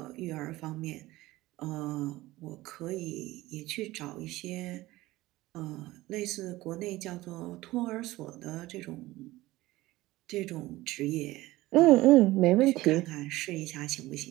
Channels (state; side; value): quieter; left; 18.1 dB